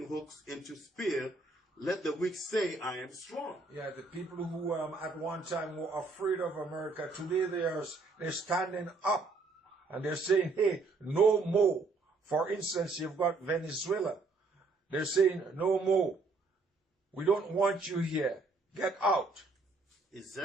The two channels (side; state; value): left; quieter; 3.7 dB